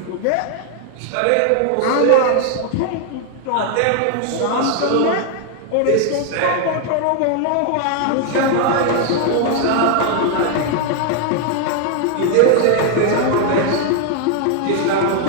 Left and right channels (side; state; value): both; different; correlation 0.00